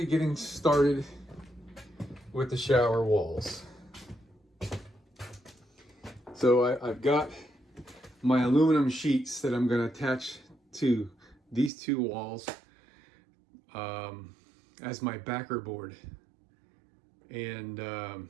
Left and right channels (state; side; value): drops out; left; at 11.7 s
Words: getting started with the shower walls. So I've got my aluminum sheets that I'm going to attach to these two walls as my backer board. And